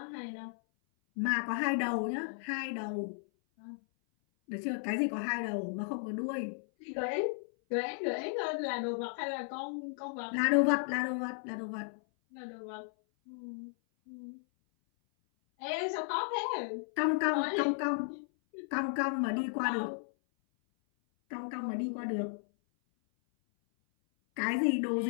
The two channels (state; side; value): silent; right; 55 dB below the other